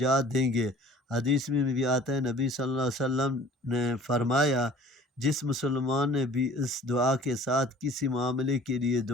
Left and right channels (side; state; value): both; normal; correlation 0.48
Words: دیں گے۔ حدیث میں بھی آتا ہے، نبی صلی اللہ علیہ وسلم نے فرمایا، جس مسلمان نے بھی اس دعا کے ساتھ کسی معاملے کے لیے